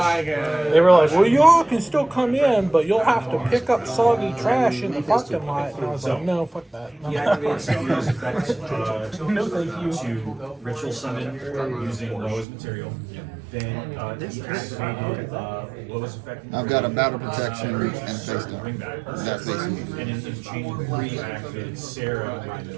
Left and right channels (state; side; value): drops out; left; at 12.5 s